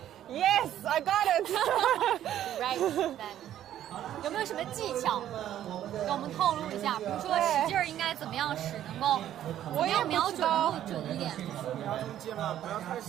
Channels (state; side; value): quieter; left; 11.6 dB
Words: yes, I got it. Right then. 有没有什么技巧给我们透露一下？比如说使劲儿应该怎么样使，能够怎么样瞄准能够准一点